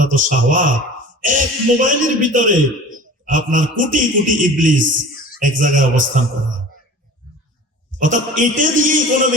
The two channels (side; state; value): both; normal; correlation 0.40